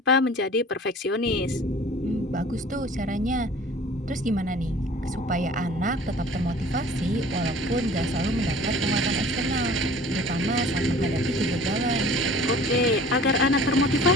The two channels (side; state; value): both; normal; correlation 0.46